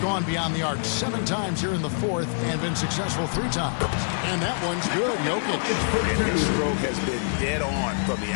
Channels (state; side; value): silent; right; 57 dB below the other